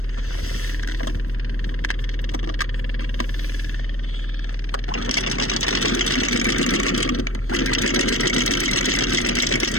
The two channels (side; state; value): right; late; 0.63 ms